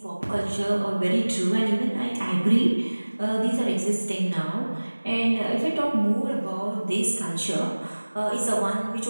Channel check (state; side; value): inverted; both; correlation -1.00